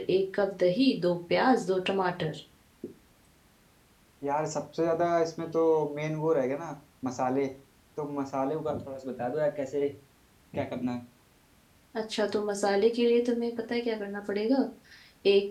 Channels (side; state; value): both; identical; correlation 1.00